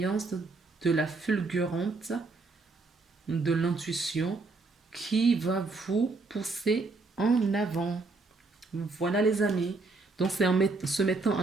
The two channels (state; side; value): quieter; left; 3.7 dB